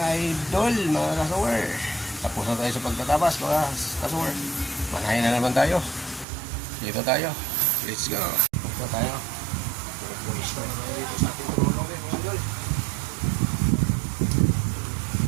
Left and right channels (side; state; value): left; drops out; at 6.2 s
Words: idol, mga kasuwer. Tapos na tayo sa pagtatabas, mga kasuwer. Manahin na naman tayo. Dito tayo. Let's go. Dito tayo. Pulis na naman dito sa ating tulong, mga idol.